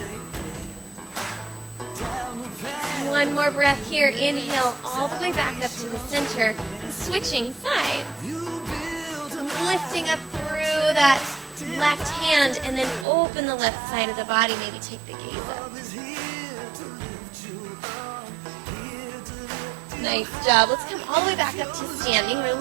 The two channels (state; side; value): drops out; left; at 13.1 s